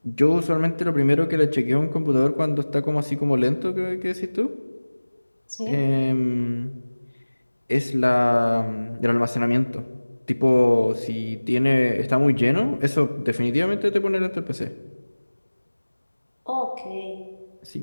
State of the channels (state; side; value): inverted; both; correlation -1.00